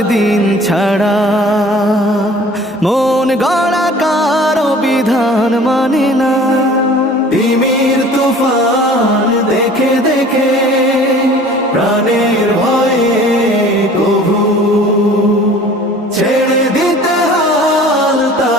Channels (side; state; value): both; normal; correlation 0.47